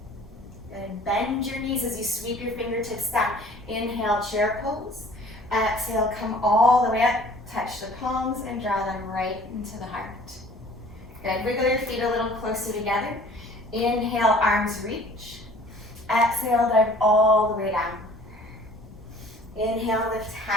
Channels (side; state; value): both; normal; correlation 0.51